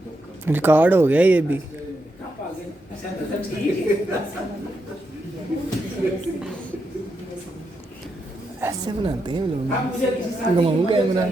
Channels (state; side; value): normal; both; correlation 0.84